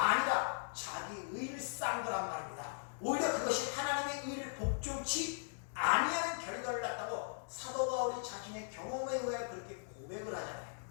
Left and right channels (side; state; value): right; silent; 52 dB below the other